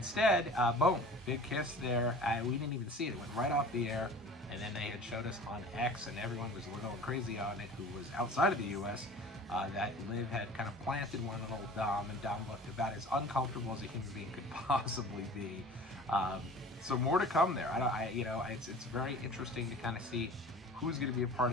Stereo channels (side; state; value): both; normal; correlation 0.42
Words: boom, big kiss there. We didn't even see it. It went right off the air. And then they had showed us on X, and everyone was going crazy on it, who was outside of the U.S., that Liv had kind of planted one on old Dom, and Dom looked about as uncomfortable as a human being could possibly be. So more to come there. It's very interesting to kind of see who's going to be a part